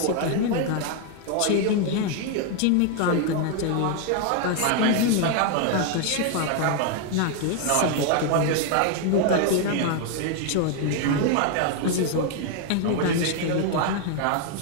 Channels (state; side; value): different; both; correlation 0.01